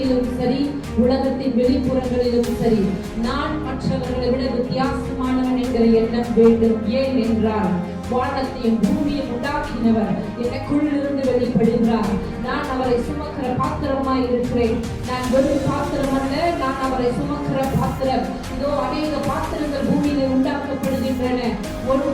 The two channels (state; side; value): identical; both; correlation 1.00